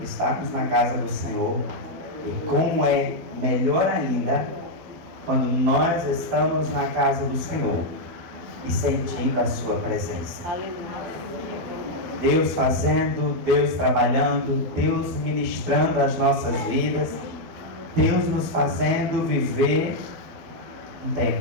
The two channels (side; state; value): left; late; 12 ms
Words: na casa do Senhor. E como é melhor ainda quando nós estamos na casa do Senhor e sentindo a sua presença. Deus fazendo, Deus trabalhando, Deus ministrando as nossas vidas, Deus nos fazendo viver um